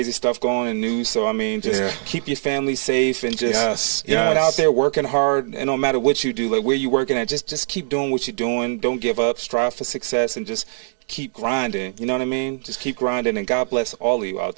stuff going on in news, so I mean, just keep your family safe and just anyone out there working hard. And no matter what you do, like where you working at, just keep doing what you're doing. Don't give up. Strive for success and just keep grinding. You know what I mean? Just keep grinding, and God bless all of you out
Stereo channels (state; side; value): silent; left; digital silence